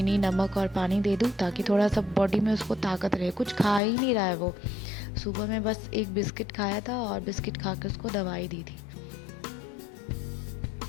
नमक और पानी दे दूँ ताकि थोड़ा सा बॉडी में उसको ताकत रहे। कुछ खा ही नहीं रहा है वो, सुबह में बस एक बिस्किट खाया था और बिस्किट खा के उसको दवाई दी थी।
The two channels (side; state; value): right; drops out; at 3.8 s